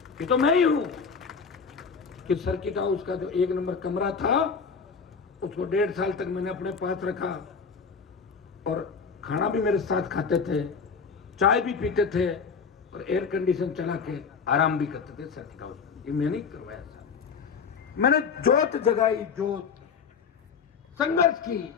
ये तो मैं ही हूं कि सर्किट हाउस का जो 1 नंबर कमरा था उसको 1.5 साल तक मैंने अपने पास रखा और खाना भी मेरे साथ खाते थे, चाय भी पीते थे और एयर कंडीशन चला के आराम भी करते थे सर्किट हाउस में। ये मैंने करवाया था। मैंने जोत जगाई, जोत संघर्ष की।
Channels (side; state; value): right; quieter; 5.7 dB